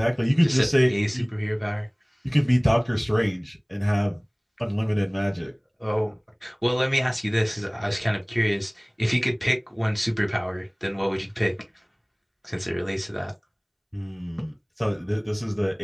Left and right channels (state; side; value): identical; both; correlation 1.00